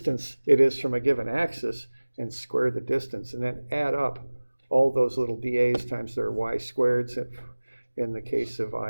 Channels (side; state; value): both; inverted; correlation -1.00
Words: it is from a given axis, and square the distance, and then add up all those little dAs times their y squareds in the case of